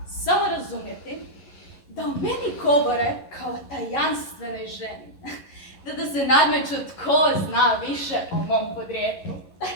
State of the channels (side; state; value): right; late; 11 ms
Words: samo razumjeti da o meni govore kao tajanstvenoj ženi. Da se nadmeću tko zna više o mom podrijetlu.